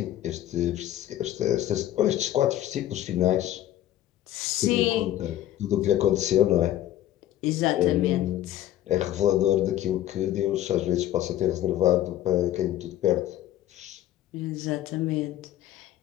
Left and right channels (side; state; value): right; quieter; 13.1 dB